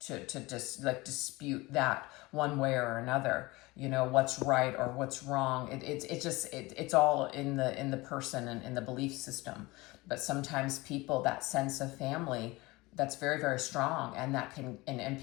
just like dispute that one way or another, what's right or what's wrong. It's all in the person and in the belief system. But sometimes people, that sense of family, that's very, very strong, and that can, and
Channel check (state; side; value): quieter; right; 22.0 dB